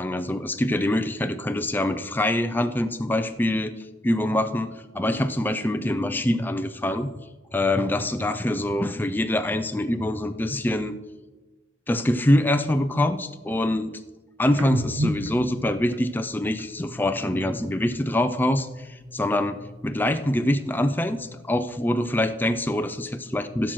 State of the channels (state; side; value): normal; both; correlation 0.80